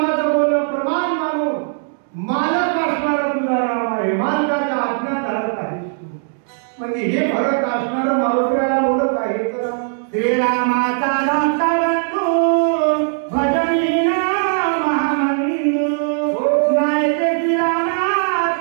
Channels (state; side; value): silent; left; digital silence